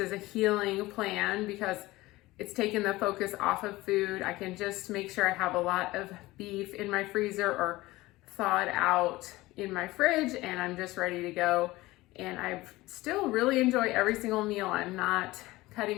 a healing plan because it's taken the focus off of food. I can just make sure I have a lot of beef in my freezer or thawed out in my fridge, and I'm just ready to go. And I still really enjoy every single meal. I'm not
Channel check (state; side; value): quieter; right; 19.1 dB